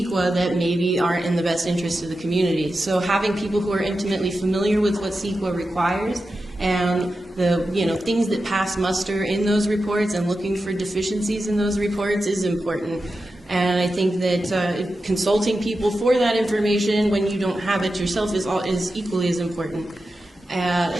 that maybe aren't in the best interest of the community. So having people who are intimately familiar with what CEQA requires and the things that pass muster in those reports and looking for deficiencies in those reports is important. And I think that consulting people for that information when you don't have it yourself is equally as important.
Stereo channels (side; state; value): both; normal; correlation 0.91